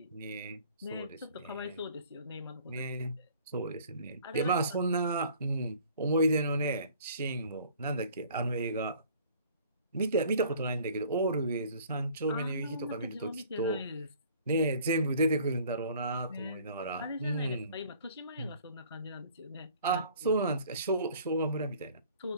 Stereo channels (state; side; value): inverted; both; correlation -0.52